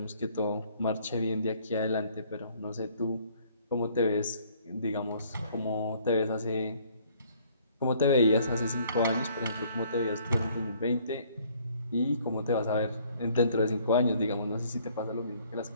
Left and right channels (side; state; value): both; inverted; correlation -0.60